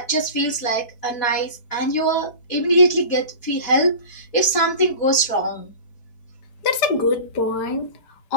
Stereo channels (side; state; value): right; late; 4.6 ms